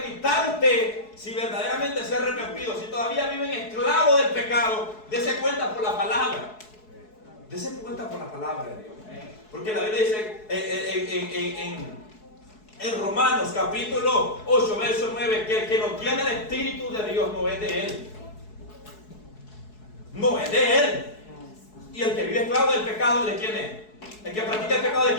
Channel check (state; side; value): late; right; 4.7 ms